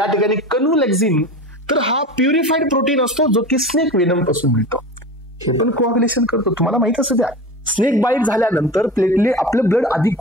ठिकाणी कन्व्हलेक्सिन. तर हा प्युरिफाईड प्रोटीन असतो जो की स्नेक वेनम पासून मिळतो. हे पण कोऑग्युलेशन करतो, तुम्हाला माहित असं द्या. स्नेक बाईट झाल्यानंतर प्लेटलेट आपलं ब्लड आधी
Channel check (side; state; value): both; normal; correlation 0.31